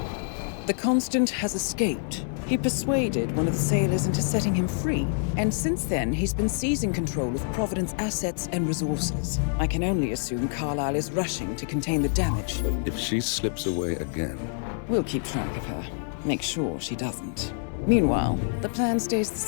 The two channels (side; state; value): right; silent; 60 dB below the other